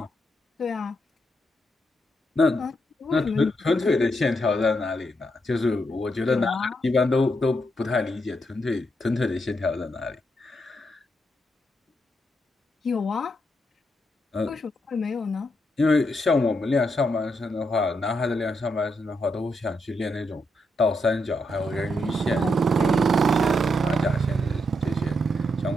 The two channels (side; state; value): both; normal; correlation 0.80